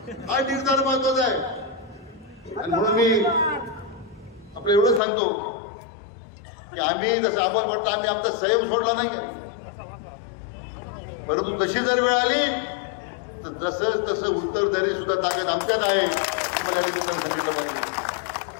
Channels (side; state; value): right; drops out; at 5.0 s